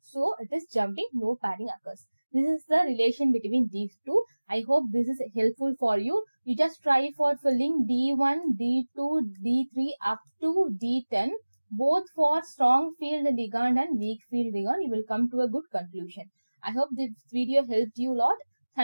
So it is jumping, no pairing occurs. This is the relation between these two. I hope this is helpful for you. You just try for filling D1, D2, D3 up to D10. Both for strong field ligand and weak field ligand. You will come to a good conclusion. I hope this video helped you a lot.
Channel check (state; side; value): inverted; both; correlation -1.00